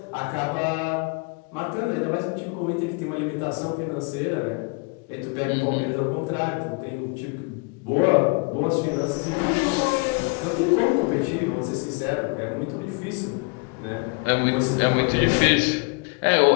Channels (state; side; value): quieter; right; 32.0 dB